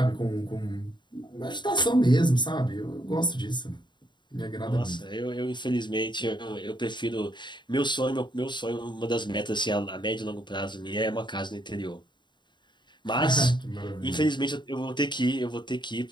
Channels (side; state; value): right; late; 0.22 ms